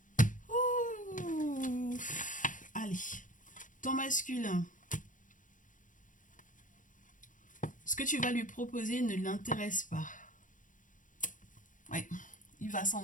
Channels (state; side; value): late; right; 0.38 ms